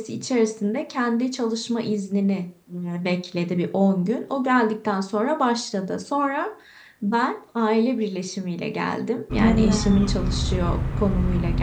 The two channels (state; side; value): identical; both; correlation 1.00